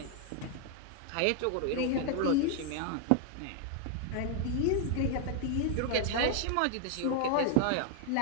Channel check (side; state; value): both; different; correlation 0.00